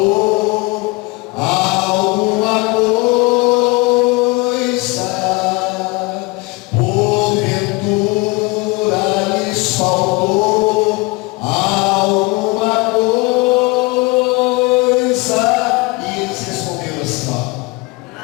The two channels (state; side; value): quieter; right; 25.2 dB